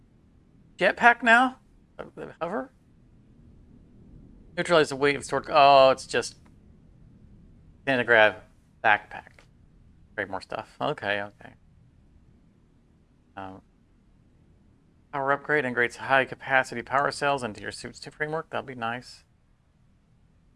jetpack now. Hover. Neutralize the weight of stored. Oh, it's just anti-grav backpack. Create more stuff. Okay, okay. Power upgrade integrates high capacity power cells into your suit's framework. That'll be nice.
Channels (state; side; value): identical; both; correlation 1.00